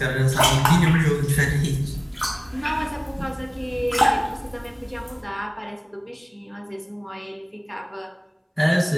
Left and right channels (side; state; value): both; identical; correlation 1.00